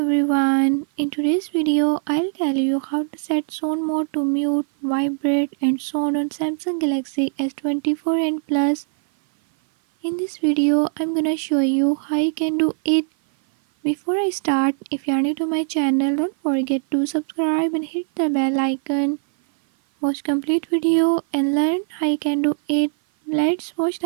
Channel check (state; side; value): silent; left; 57 dB below the other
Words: everyone. In today's video, I'll tell you how to set sound mode to mute, vibrate and sound on Samsung Galaxy S24 and Plus. In this video, I'm gonna show you how you can do it. Before I start, if you are new to my channel, don't forget to subscribe and hit the bell icon. Watch complete video and learn how you can do it. Let's watch